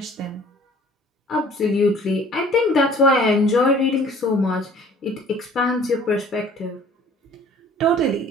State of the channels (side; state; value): both; normal; correlation 0.51